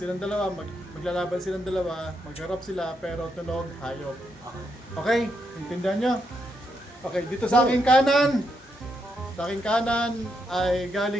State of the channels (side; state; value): both; normal; correlation 0.80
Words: dalawa, maglalaban silang dalawa, magharap sila pero tunog hayop. Okay, intindihan nyo? Okay, dito sa aking kanan. Sa aking kanan ay